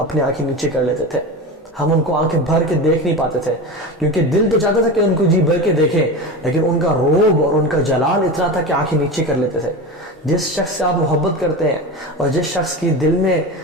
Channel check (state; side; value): normal; both; correlation 0.25